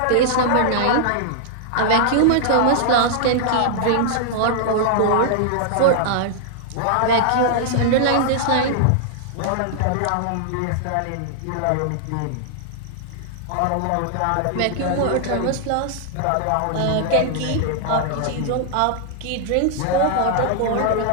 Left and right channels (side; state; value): both; different; correlation -0.01